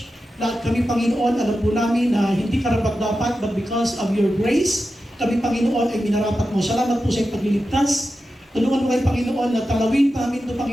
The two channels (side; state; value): both; normal; correlation 0.91